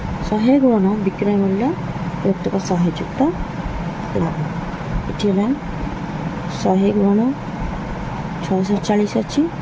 100 गुणन विक्रय मूल्य विभक्तक 100 युक्त लाभ इठी होला 100 गुणन 640 अछि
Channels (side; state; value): both; identical; correlation 1.00